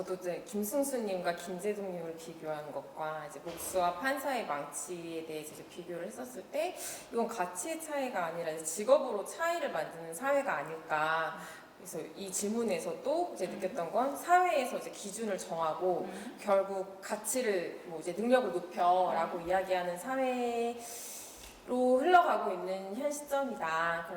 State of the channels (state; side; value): identical; both; correlation 1.00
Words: 이제 김승수님과 김재동님을 비교한 것과 이제 목수와 판사의 망치에 대해서 이제 비교를 했었을 때 이건 가치의 차이가 아니라 이제 직업으로 차이를 만드는 사회가 아닐까. 그래서 이 질문에서도 이제 느꼈던 건 사회에서 이제 기준을 정하고 결국 가치를 뭐 이제 능력을 높여라고 이야기하는 사회로 흘러가고 있는 현 시점이다.